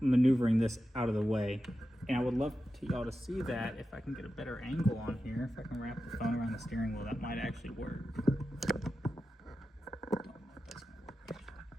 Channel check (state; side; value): normal; both; correlation 0.91